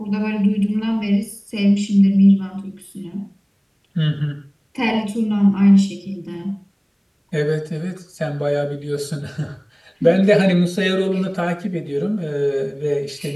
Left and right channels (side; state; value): both; identical; correlation 1.00